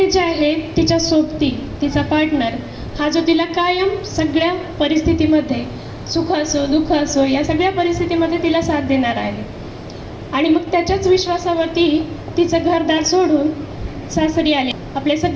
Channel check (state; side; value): identical; both; correlation 1.00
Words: जे आहे तिच्या सोबती तिचा पार्टनर हा जो तिला कायम सगळ्या परिस्थितीमध्ये सुख असो दुःख असो या सगळ्या परिस्थितीमध्ये तिला साथ देणार आहे. आणि मग त्याच्याच विश्वासावरती तिचं घरदार सोडून सासरी आले. आपले